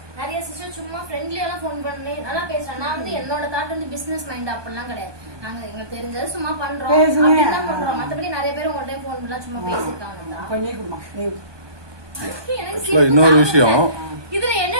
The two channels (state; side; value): late; left; 1.2 ms